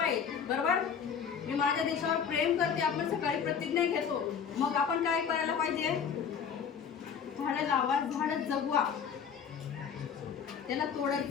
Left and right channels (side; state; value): right; quieter; 7.1 dB